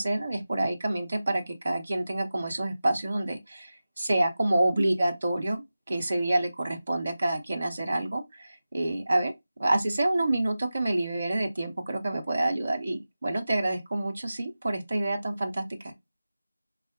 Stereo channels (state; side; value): inverted; both; correlation -0.95